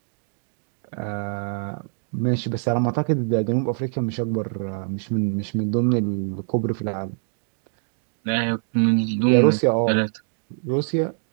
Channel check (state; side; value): silent; left; digital silence